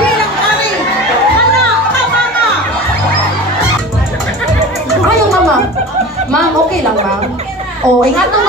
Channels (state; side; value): normal; both; correlation 0.36